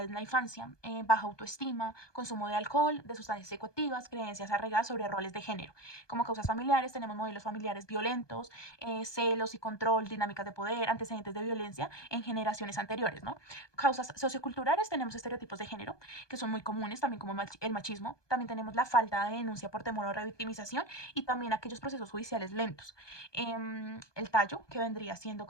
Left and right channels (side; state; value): right; late; 1.2 ms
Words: en la infancia, baja autoestima, consumo de alcohol, de sustancias psicoactivas, creencias arraigadas sobre roles de género. Como causas familiares, tenemos modelos familiares violentos, celos y control, dinámicas de poder, antecedentes de violencia en generaciones anteriores, ¿no? Causas socioculturales, tenemos estereotipos de género, que son muy comunes, también como el machismo. También tenemos la falta de denuncia por temor a revictimización y también aquellos procesos judiciales lentos. El tallo, que vendría siendo